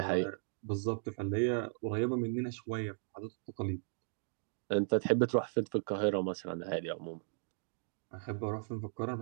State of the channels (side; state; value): left; silent; digital silence